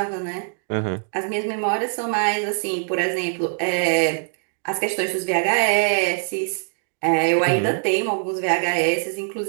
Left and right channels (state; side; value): silent; left; digital silence